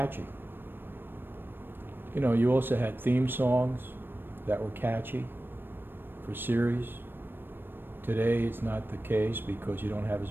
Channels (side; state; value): left; late; 0.097 ms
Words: You know, you also had theme songs that were catchy for series. Today it's not the case because you don't have